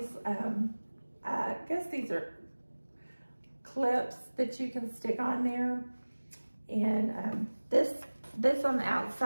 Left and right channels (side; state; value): both; inverted; correlation -1.00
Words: I guess these are clips that you can stick on there. And this on the